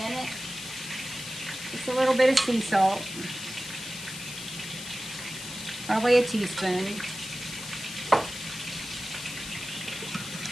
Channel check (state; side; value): noise; left; hiss, 9 dB below the sound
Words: it. Just a little bit of sea salt. Probably a teaspoon.